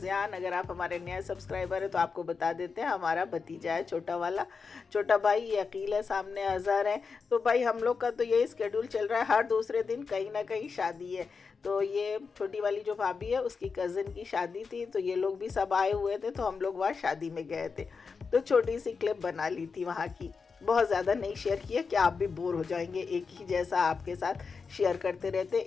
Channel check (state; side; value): quieter; right; 5.1 dB